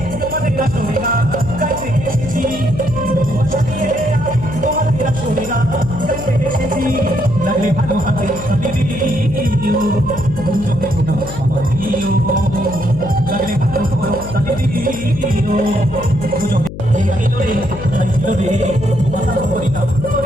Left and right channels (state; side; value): noise; left; hum, 11 dB below the sound